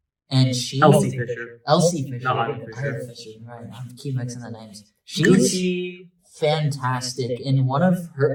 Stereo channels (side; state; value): both; identical; correlation 1.00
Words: And she... Elsie Fisher. Elsie Fisher. Not Isla Fisher. Isla Fisher, right. I keep mixing the names. She's fantastic. In one of